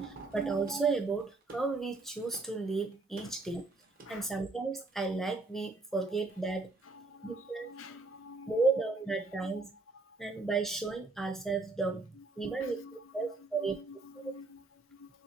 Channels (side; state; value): left; quieter; 3.4 dB